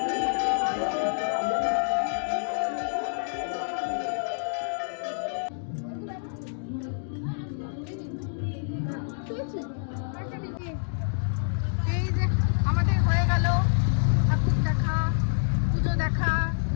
এই যে আমাদের হয়ে গেল ঠাকুর দেখা, পুজো দেখা,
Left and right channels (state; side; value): silent; right; digital silence